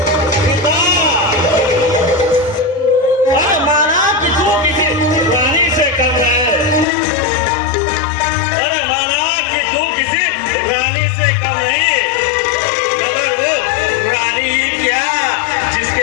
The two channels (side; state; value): right; drops out; at 6.9 s